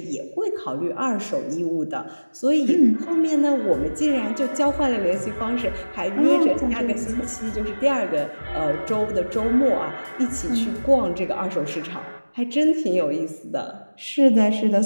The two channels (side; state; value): both; inverted; correlation -1.00